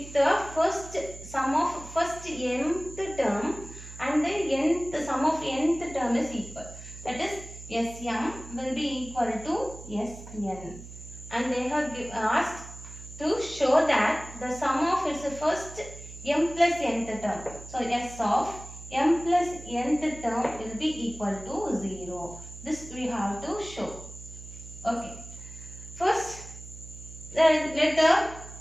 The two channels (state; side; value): noise; right; hum, 14 dB below the sound